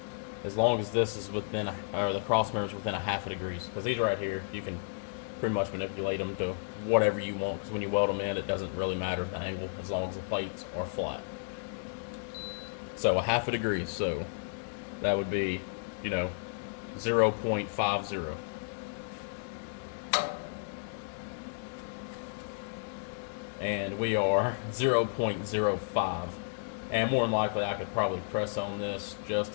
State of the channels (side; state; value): right; silent; digital silence